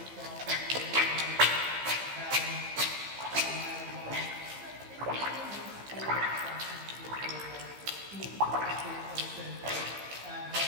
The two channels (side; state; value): left; late; 15 ms